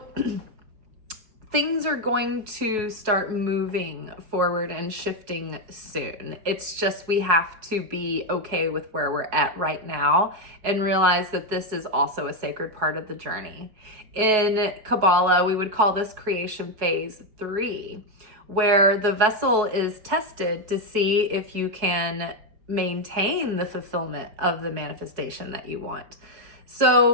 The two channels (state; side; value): late; left; 4.7 ms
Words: things are going to start moving forward and shifting soon. It's just we have to be okay with where we're at right now and realize that this is also a sacred part of the journey. In Kabbalah, we would call this creation phase 3, where the vessel is tested to see if you can maintain the fulfillment of the manifestation that you want.